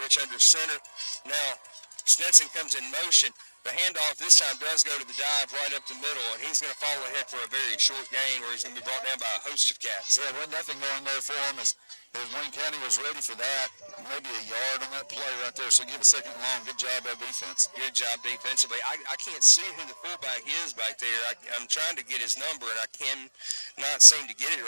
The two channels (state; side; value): inverted; both; correlation -1.00